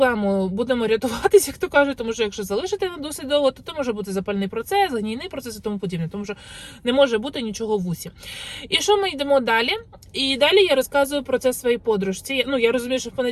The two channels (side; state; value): both; identical; correlation 1.00